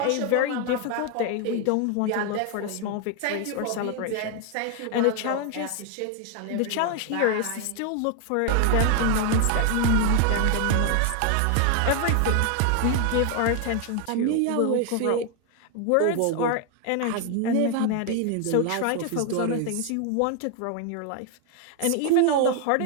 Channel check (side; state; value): both; different; correlation 0.01